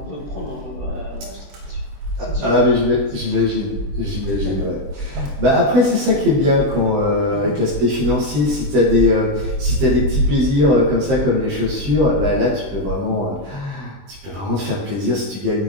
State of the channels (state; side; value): late; left; 20 ms